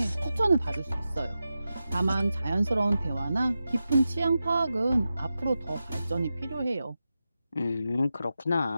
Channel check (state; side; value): inverted; both; correlation -0.91